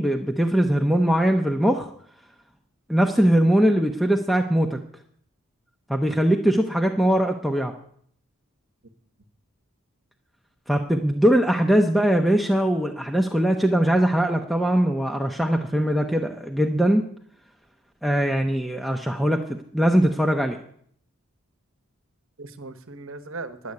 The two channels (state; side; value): normal; both; correlation 0.92